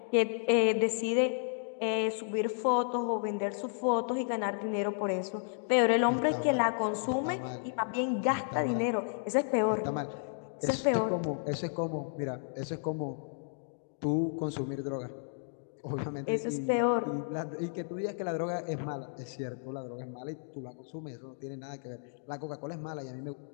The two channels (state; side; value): silent; right; digital silence